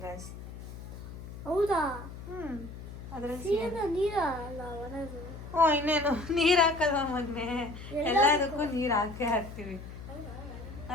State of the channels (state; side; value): noise; left; hum, 12 dB below the sound